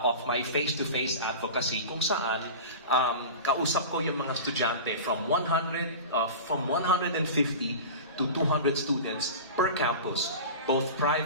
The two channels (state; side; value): inverted; both; correlation -0.31